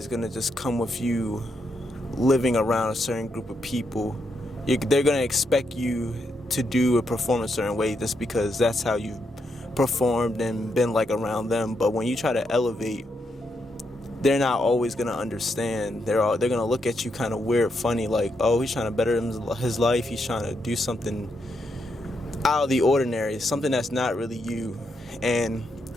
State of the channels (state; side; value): normal; both; correlation 0.81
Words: gonna just come with you living around a certain group of people. They're gonna expect you to do or perform a certain way just because that's how you've performed and been like around them. But when you try to elevate, they're not always gonna understand. They're gonna look at you kind of weird, funny, like, oh, he's trying to better his life. He's trying to do something out of the ordinary, something that's not really you. And